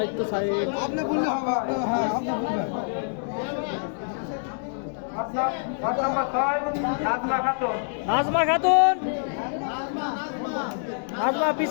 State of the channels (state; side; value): silent; right; digital silence